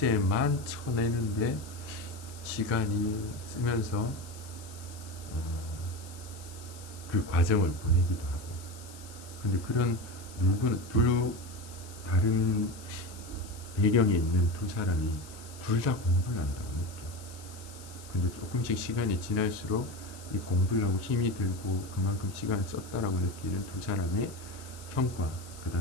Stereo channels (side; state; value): left; noise; hiss, 18 dB below the sound